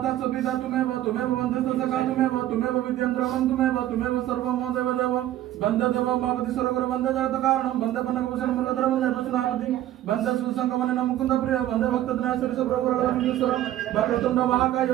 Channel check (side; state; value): left; quieter; 13.3 dB